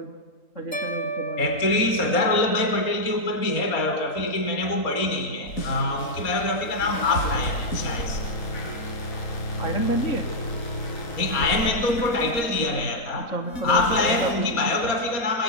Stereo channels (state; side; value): late; right; 3.8 ms